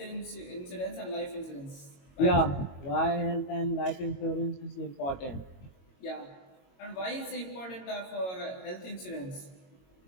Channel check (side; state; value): right; late; 22 ms